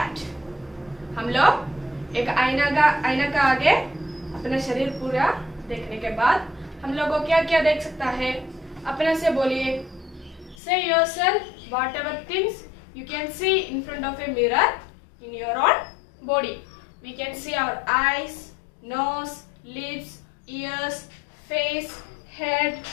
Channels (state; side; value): drops out; right; at 10.6 s